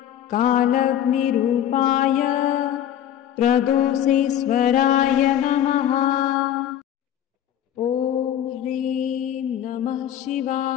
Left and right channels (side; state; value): right; quieter; 10.7 dB